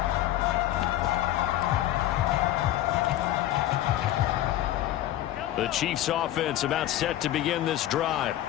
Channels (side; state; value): right; quieter; 13.6 dB